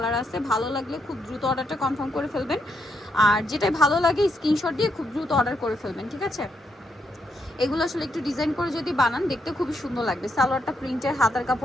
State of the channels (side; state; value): both; normal; correlation 0.78